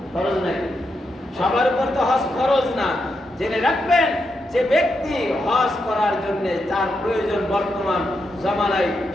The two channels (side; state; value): both; normal; correlation 0.84